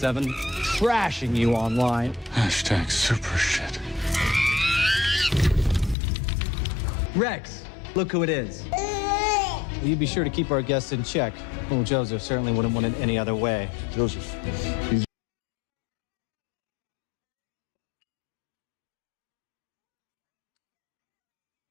trashing you online. Hashtag super shit. Rex, look who it is. Will you be sure to keep our guests in check? Well, Joseph certainly wouldn't want it any other way. Joseph, he's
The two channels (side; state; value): right; drops out; at 6.0 s